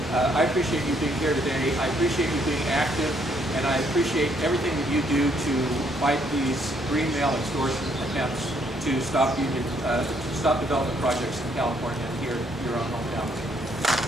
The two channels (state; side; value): normal; both; correlation 0.69